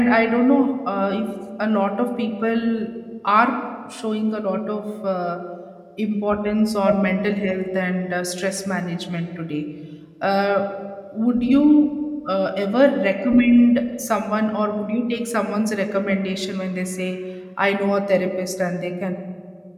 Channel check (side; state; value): both; identical; correlation 1.00